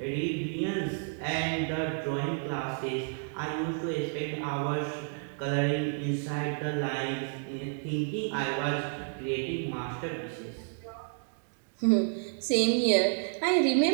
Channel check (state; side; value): silent; left; 57 dB below the other